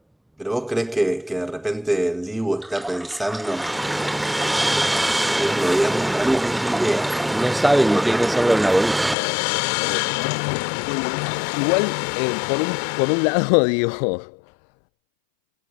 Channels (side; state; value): right; drops out; at 9.2 s